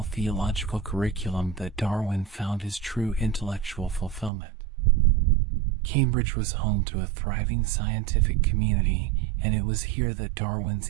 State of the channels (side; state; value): left; drops out; at 4.3 s